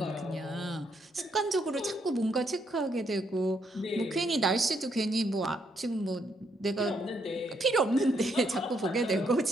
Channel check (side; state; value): both; normal; correlation 0.75